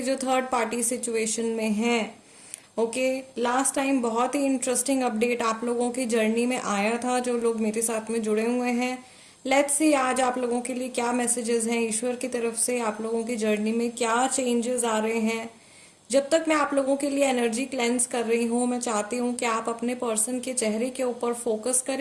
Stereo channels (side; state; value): both; identical; correlation 1.00